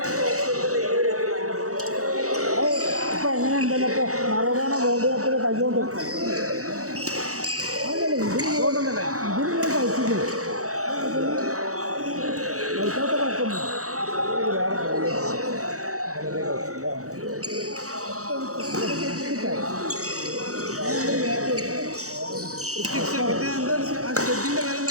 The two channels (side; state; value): left; late; 0.65 ms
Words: ഇപ്പം എങ്ങനെ ഉണ്ടല്ലോ ഇപ്പോൾ മറഡോണ വേൾഡ് കപ്പിൽ കൈകൊണ്ട് അതല്ലേ ഇതിന് കഴിച്ചില്ലേ കഴിക്കാത്ത കുഴപ്പമില്ല.